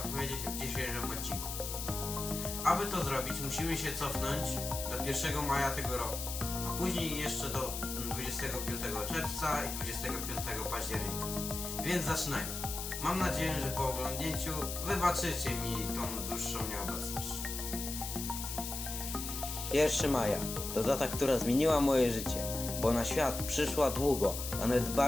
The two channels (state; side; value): noise; left; hiss, 6 dB below the sound